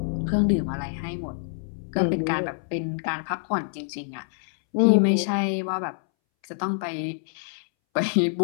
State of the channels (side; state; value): right; silent; 61 dB below the other